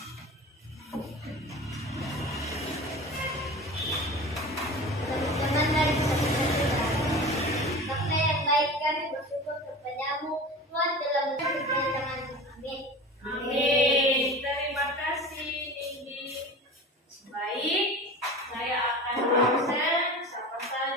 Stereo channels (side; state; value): both; normal; correlation 0.34